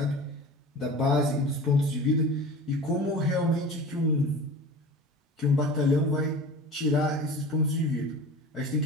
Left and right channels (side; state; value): both; normal; correlation 0.36